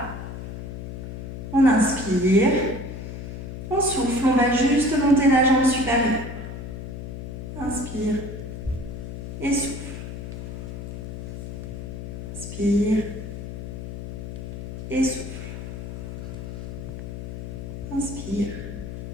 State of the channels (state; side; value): noise; left; hum, 8 dB below the sound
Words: On inspire. On souffle. On va juste monter la jambe supérieure. Inspire. Et souffle. Inspire. Et souffle. Inspire.